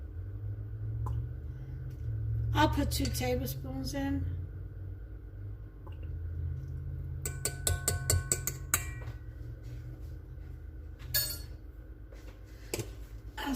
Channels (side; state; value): both; identical; correlation 1.00